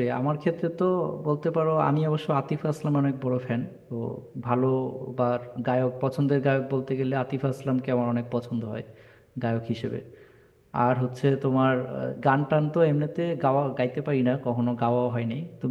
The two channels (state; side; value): identical; both; correlation 1.00